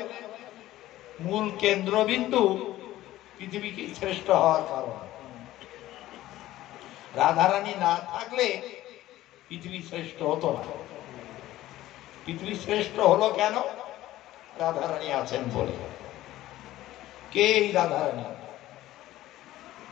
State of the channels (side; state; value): right; quieter; 15.2 dB